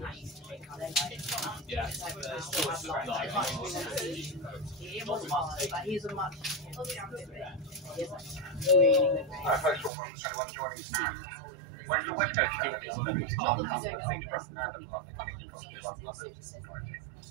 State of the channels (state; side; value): drops out; left; at 9.9 s